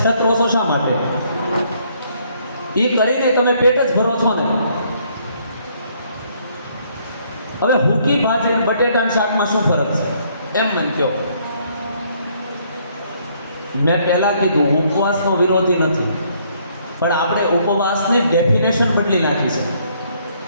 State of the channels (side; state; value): both; inverted; correlation -0.67